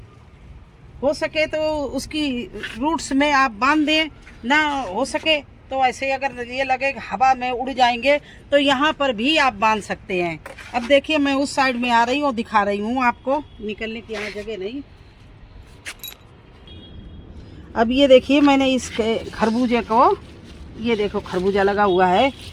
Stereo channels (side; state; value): both; identical; correlation 1.00